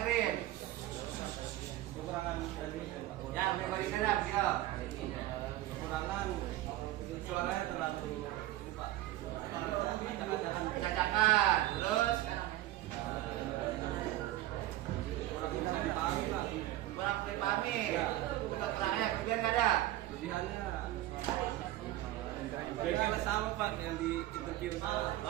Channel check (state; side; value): quieter; left; 15.3 dB